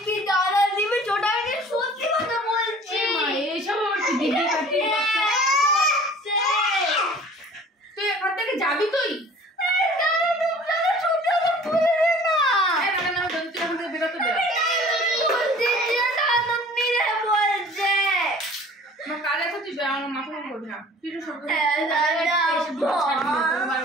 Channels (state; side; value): normal; both; correlation 0.48